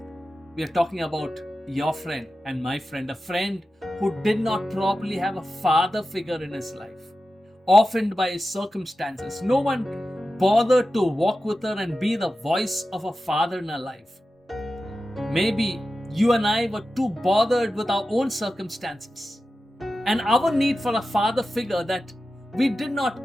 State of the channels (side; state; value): both; normal; correlation 0.93